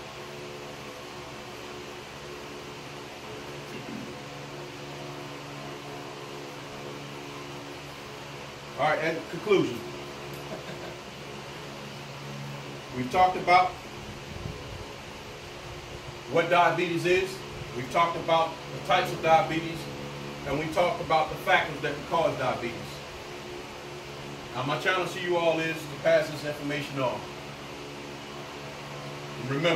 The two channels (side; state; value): both; identical; correlation 1.00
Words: all right, and conclusion. We've talked about what diabetes is. We've talked about the types of diabetes, and we talked about the factors that can cause diabetes. Now, my challenge to you all is to pass this information on. And